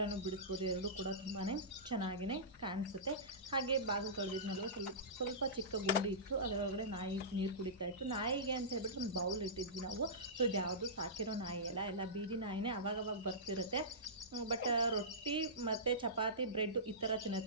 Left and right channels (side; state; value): both; normal; correlation -0.20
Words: ಬಿಡಿಸ್ಬೋದು. ಎರಡೂ ಕೂಡ ತುಂಬಾ ಚೆನ್ನಾಗಿಯೇ ಕಾಣಿಸುತ್ತೆ. ಹಾಗೆ ಬಾಗಿಲು ತೊಳೆದಿದ್ನಲ್ವ, ಸ್ವಲ್ಪ ಚಿಕ್ಕ ಗುಂಡಿ ಇತ್ತು, ಅದರೊಳಗಡೆ ನಾಯಿ ನೀರು ಕುಡಿತಾ ಇತ್ತು. ನಾಯಿಗೆ ಅಂತ ಹೇಳ್ಬಿಟ್ಟು ಒಂದು ಬೌಲ್ ಇಟ್ಟಿದ್ವಿ ನಾವು. ಸೊ ಇದು ಯಾವುದು ಸಾಕಿರೋ ನಾಯಿ ಎಲ್ಲ ಬೀದಿ ನಾಯಿನೇ, ಅವಾಗವಾಗ ಬರ್ತಿರುತ್ತೆ. ಬಟ್ ರೊಟ್ಟಿ ಮತ್ತು ಚಪಾತಿ ಬ್ರೆಡ್ ಈ ಥರ